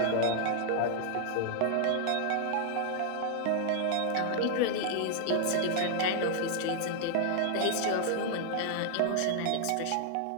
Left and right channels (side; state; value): both; different; correlation -0.01